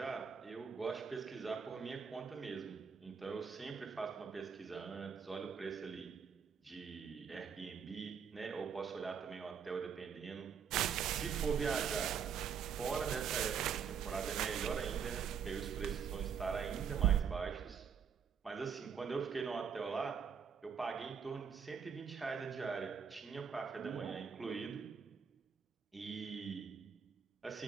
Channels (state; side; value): quieter; left; 6.9 dB